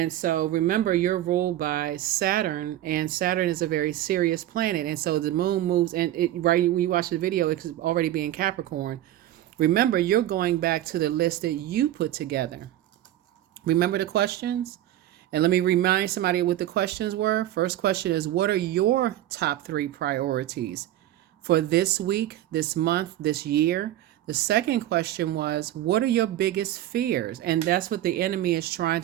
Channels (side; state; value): left; quieter; 13.5 dB